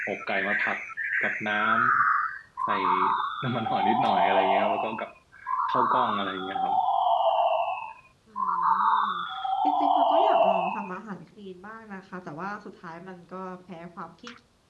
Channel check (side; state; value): both; identical; correlation 1.00